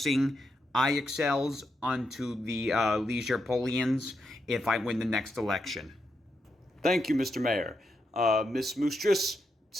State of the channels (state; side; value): normal; both; correlation 0.83